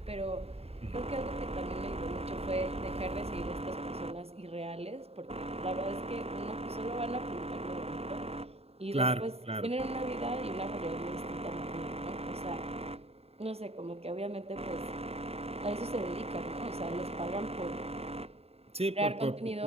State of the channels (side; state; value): left; late; 0.29 ms